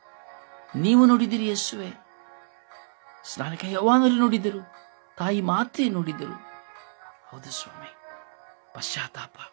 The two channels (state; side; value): silent; left; digital silence